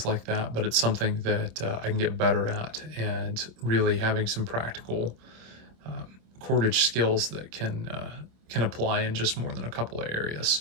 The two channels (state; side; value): late; left; 26 ms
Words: like that, but it's something that I can get better at, and really having some practical cordage skills that can apply in just more than a couple of areas.